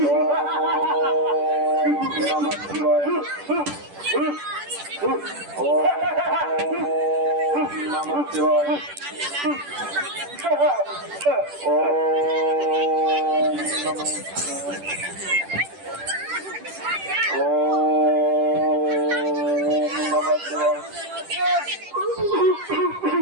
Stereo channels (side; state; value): left; late; 10 ms